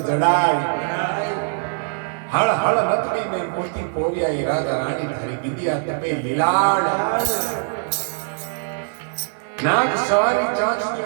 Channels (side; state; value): left; silent; 58 dB below the other